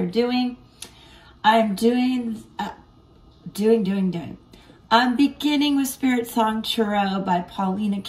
doing. I'm doing. I'm beginning with Spiritsong Tarot by Paulina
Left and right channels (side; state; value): both; identical; correlation 1.00